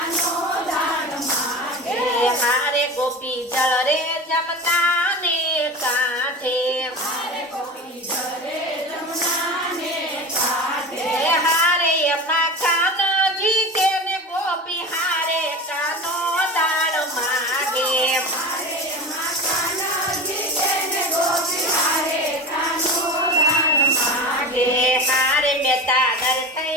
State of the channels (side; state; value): both; normal; correlation 0.29